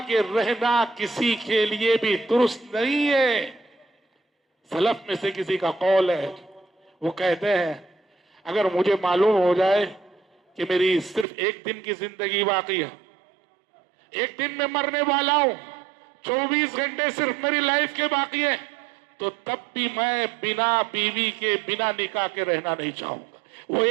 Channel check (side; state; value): left; drops out; at 11.2 s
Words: کے رہنا کسی کے لیے بھی درست نہیں ہے۔ سلف میں سے کسی کا قول ہے، وہ کہتے ہیں اگر مجھے معلوم ہو جائے کہ میری صرف ایک دن کی زندگی باقی ہے، ایک دن میں مرنے والا ہوں، 24 گھنٹے صرف میری لائف کے باقی ہے، تو تب بھی میں بنا بیوی کے، بنا نکاح کے رہنا نہیں چاہوں گا، وہ